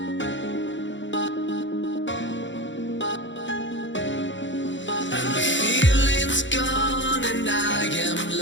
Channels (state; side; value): late; right; 0.54 ms